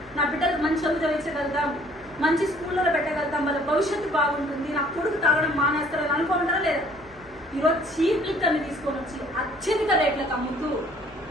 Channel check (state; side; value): noise; left; hum, 26 dB below the sound